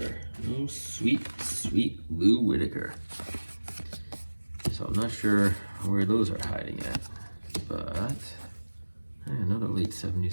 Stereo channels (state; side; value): inverted; both; correlation -1.00